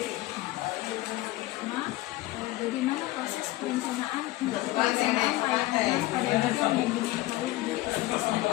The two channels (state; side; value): quieter; right; 18.0 dB